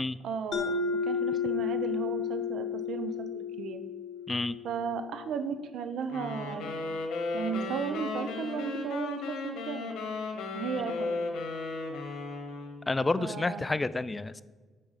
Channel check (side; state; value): both; normal; correlation 0.50